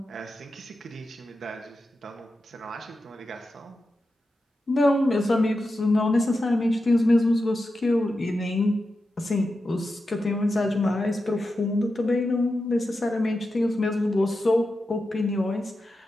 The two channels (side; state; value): both; normal; correlation 0.90